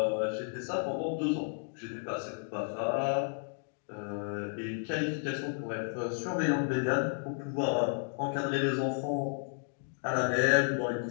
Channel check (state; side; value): silent; right; 56 dB below the other